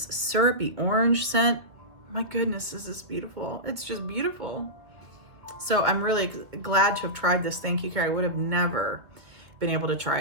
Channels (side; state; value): left; late; 2.5 ms